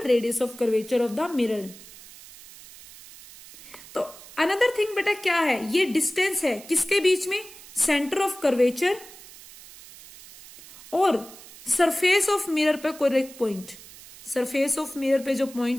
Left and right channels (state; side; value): noise; right; hiss, 19 dB below the sound